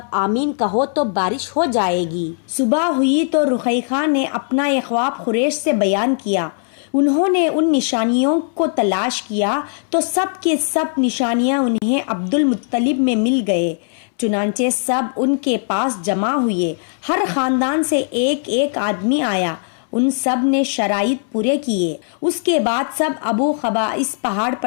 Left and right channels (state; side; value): silent; right; 67 dB below the other